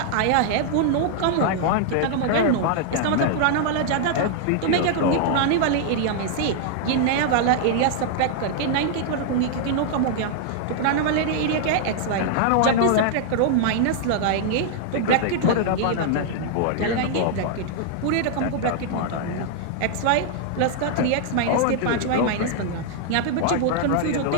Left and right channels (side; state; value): both; different; correlation -0.01